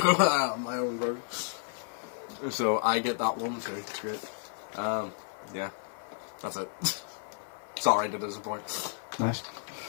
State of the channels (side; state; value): right; silent; 56 dB below the other